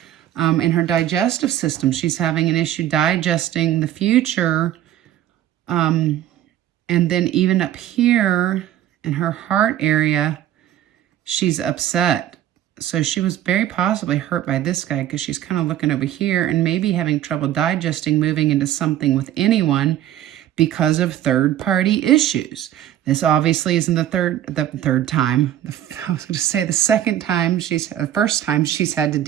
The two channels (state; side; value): quieter; left; 12.1 dB